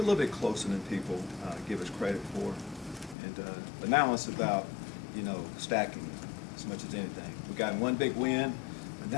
a little bit closer than people give us credit for. And but now it's about, you know, stacking as much as anything. We got one big win, but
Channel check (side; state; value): right; drops out; at 3.2 s